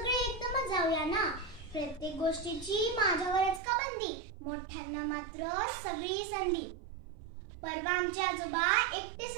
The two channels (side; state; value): left; drops out; at 3.6 s